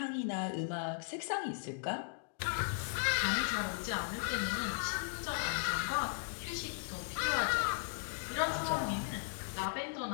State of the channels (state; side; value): silent; right; digital silence